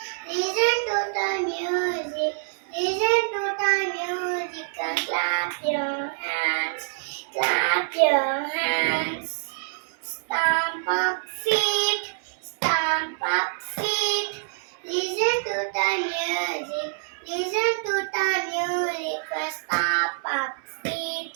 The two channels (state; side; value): silent; left; digital silence